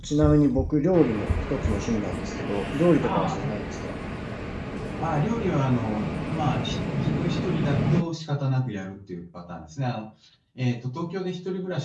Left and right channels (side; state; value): both; identical; correlation 1.00